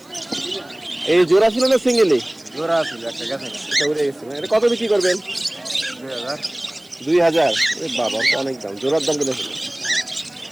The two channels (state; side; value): noise; right; hiss, 28 dB below the sound